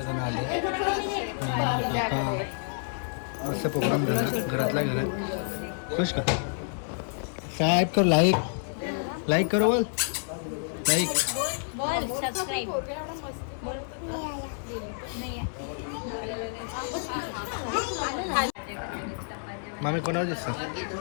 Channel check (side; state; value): right; silent; 59 dB below the other